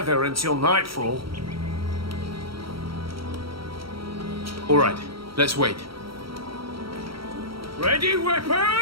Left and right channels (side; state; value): left; late; 0.75 ms